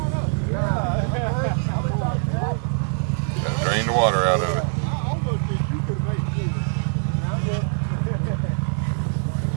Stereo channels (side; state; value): left; silent; digital silence